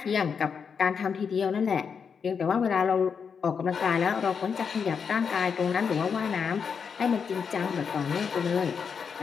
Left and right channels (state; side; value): quieter; right; 6.3 dB